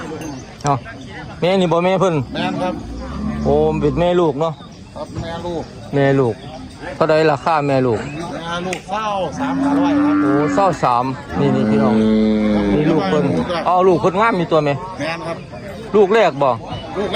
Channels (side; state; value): both; identical; correlation 1.00